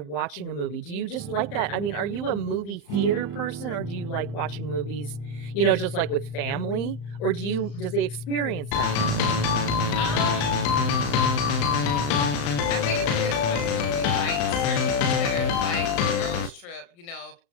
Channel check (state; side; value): late; right; 35 ms